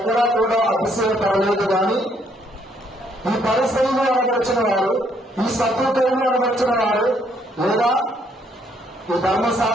కూడా అతిశయపడలేదు. కానీ ఈ పరిస్థితులు అనబడిచిన వారు, ఈ సత్వతలను అనబడిచిన వారు, లేదా ఈ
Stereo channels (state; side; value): normal; both; correlation 0.69